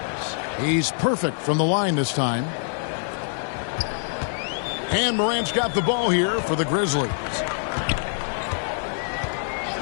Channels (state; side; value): silent; right; digital silence